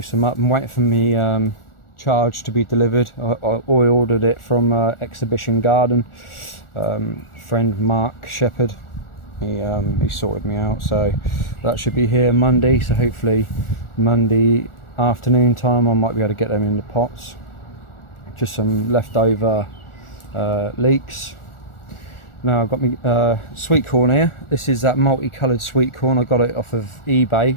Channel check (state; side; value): late; right; 1.4 ms